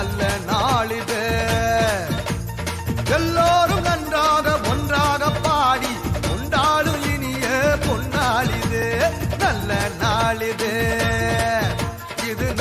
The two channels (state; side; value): identical; both; correlation 1.00